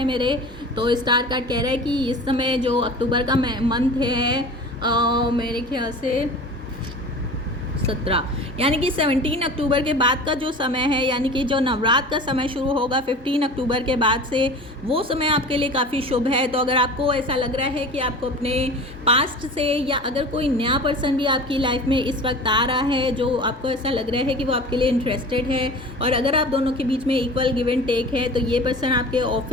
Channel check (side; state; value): both; normal; correlation 0.37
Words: मेरे। तो स्टार कार्ड कह रहा है कि इस समय जो अक्टूबर का मंथ है मेरे ख्याल से 17 यानी कि 17 अक्टूबर के बाद का जो समय है, यानी कि जो नवरात्र का समय शुरू होगा 15 अक्टूबर के बाद से, वो समय आपके लिए काफ़ी शुभ है। तो अगर आपको ऐसा लग रहा है कि आपको अपने पास्ट से या अगर कोई नया पर्सन भी आपकी लाइफ में इस वक्त आ रहा है जो आपको ऐसा लग रहा है कि वो आपके लिए इंटरेस्टेड है और अगर आप दोनों के बीच में इक्वल गिव एंड टेक है, तो ये पर्सन आपके